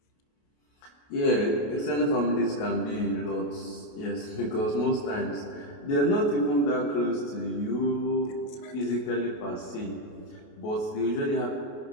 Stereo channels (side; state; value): right; late; 28 ms